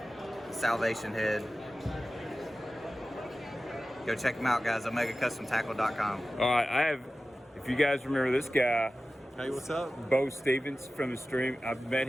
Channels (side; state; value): both; normal; correlation 0.95